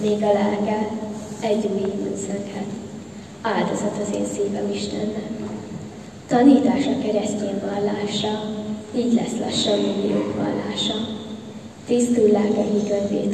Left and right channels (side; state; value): both; identical; correlation 1.00